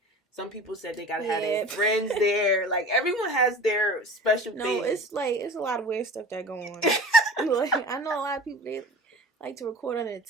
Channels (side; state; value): both; normal; correlation 0.39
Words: Some people said they gotta have their friends there. Like, everyone has their special thing. No, it's a lot of weird stuff that go on. Like, I know a lot of people, they like to record under the